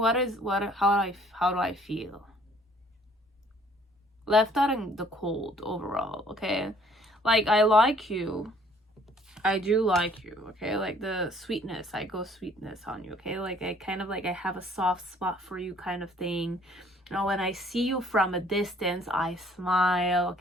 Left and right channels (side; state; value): both; normal; correlation 0.59